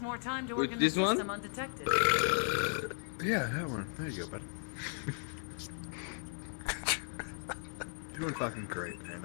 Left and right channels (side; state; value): right; silent; 54 dB below the other